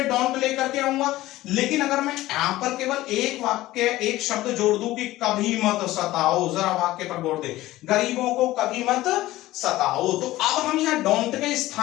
डोंट लेकर के आऊंगा, लेकिन अगर मैं यहां पर केवल एक वाक्य, एक शब्द जोड़ दूं कि कभी मत सताओ, जरा वाक्य पर गौर दें, गरीबों को कभी मत सताओ, तो अब हम यहां डोंट के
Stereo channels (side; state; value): right; quieter; 16.6 dB